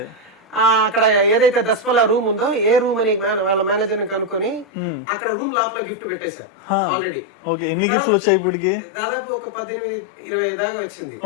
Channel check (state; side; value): drops out; right; at 4.7 s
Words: అక్కడ ఏదైతే దస్పల్లా రూమ్ ఉందో, ఏ రూమ్ అని వాళ్ళ మేనేజర్ ని కనుక్కొని అక్కడ రూమ్ లోపల గిఫ్ట్ పెట్టేశా ఆల్రెడీ. దాదాపు ఒక 18-20 దాకా వచ్చింది.